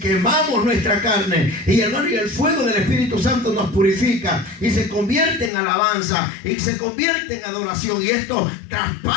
nuestra carne, y hermano, y el fuego del Espíritu Santo nos purifica y se convierte en alabanza y se convierte en adoración, y esto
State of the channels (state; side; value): drops out; right; at 5.5 s